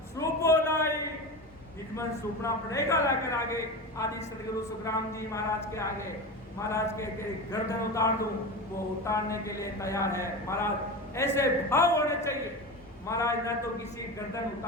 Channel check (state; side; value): normal; both; correlation 0.25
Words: सूपो लाई, निजमन सूपना पड़ेगा लाकर आगे आदि सदगुरु सुखराम जी महाराज के आगे। महाराज के गर्दन उतार दूं, वो उतारने के लिए तैयार है। महाराज ऐसे भाव होने चाहिए, महाराज न तो किसी गर्दन